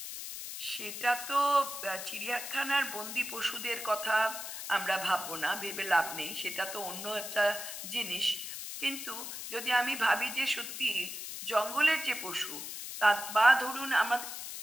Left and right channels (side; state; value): left; noise; hiss, 8 dB below the sound